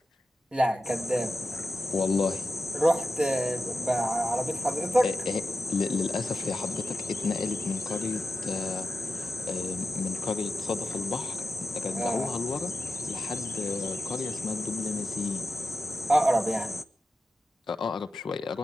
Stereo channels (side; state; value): both; normal; correlation 0.91